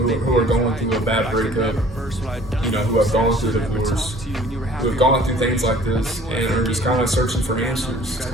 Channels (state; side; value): normal; both; correlation 0.52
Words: are going through a bad breakup, who have gone through divorce, who have gone through things like this and are just kind of searching for answers,